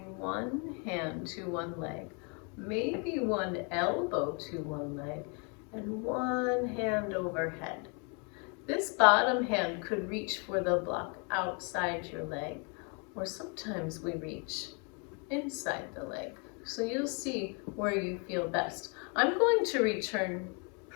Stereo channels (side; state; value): right; quieter; 35.5 dB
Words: one hand to one leg, maybe one elbow to one leg, and one hand overhead. This bottom hand could reach for the block outside your leg, or sometimes we reach inside the leg. So you'll see where you feel best. I'm going to return